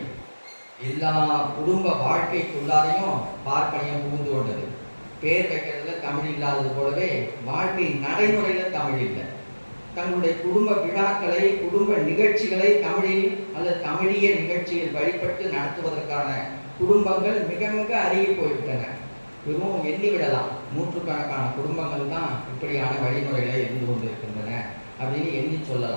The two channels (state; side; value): inverted; both; correlation -1.00